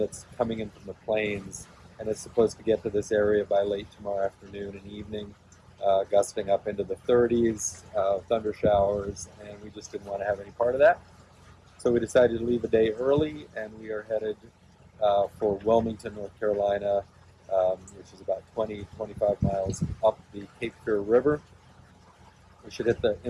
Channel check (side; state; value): both; identical; correlation 1.00